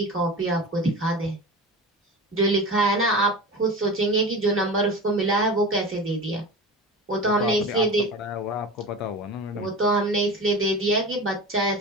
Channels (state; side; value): normal; both; correlation 0.31